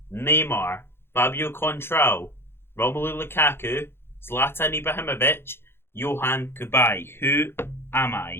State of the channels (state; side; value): late; right; 0.11 ms